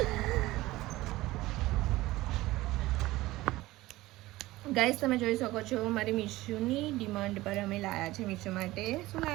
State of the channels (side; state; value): left; quieter; 18.1 dB